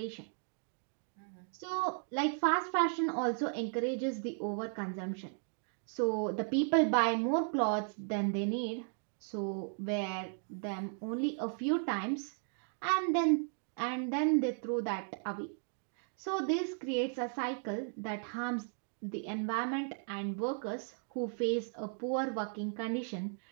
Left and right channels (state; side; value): silent; left; 54 dB below the other